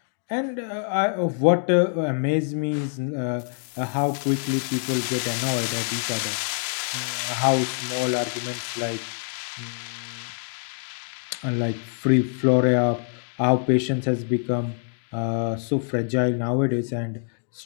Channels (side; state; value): right; silent; 61 dB below the other